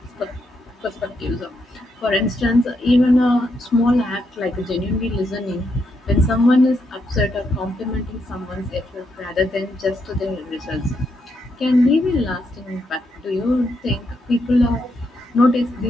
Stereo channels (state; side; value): normal; both; correlation 0.80